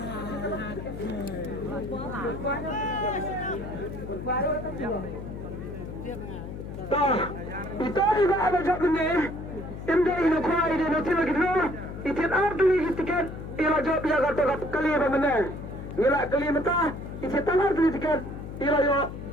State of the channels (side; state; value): left; noise; hum, 9 dB below the sound